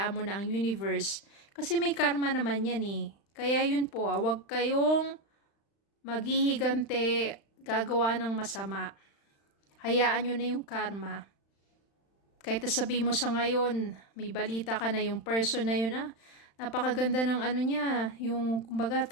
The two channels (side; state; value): right; late; 35 ms